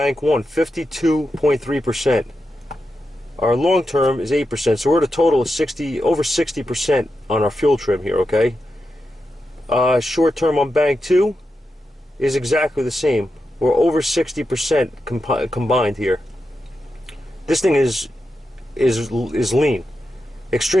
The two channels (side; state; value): both; normal; correlation 0.88